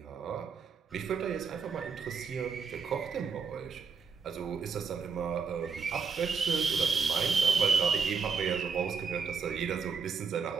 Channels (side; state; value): left; quieter; 5.6 dB